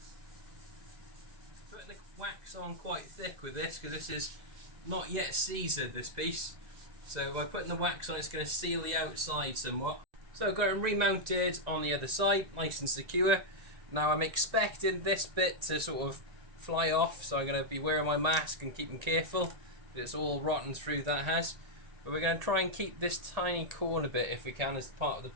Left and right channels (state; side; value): late; left; 1.8 ms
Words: Putting the wax on quite thick with this because this is not yet seasoned, this piece. So by putting the wax on, it's going to seal the outside somewhat. So I've got it remounted on the other side, nice and secure. Now I'm expecting this bit to sort of fly off, so I'm going to be wearing my mask and keeping careful. It's all rotten through, that has. But we're going to try and keep this tiny corner bit if we can as part of the